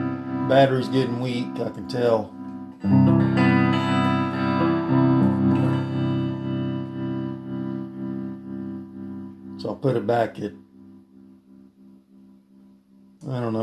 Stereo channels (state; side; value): identical; both; correlation 1.00